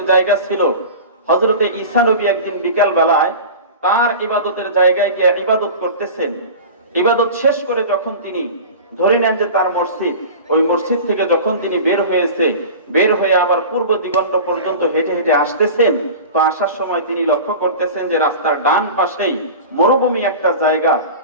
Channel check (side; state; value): both; inverted; correlation -0.34